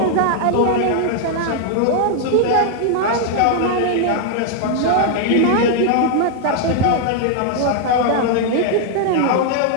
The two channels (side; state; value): both; different; correlation -0.01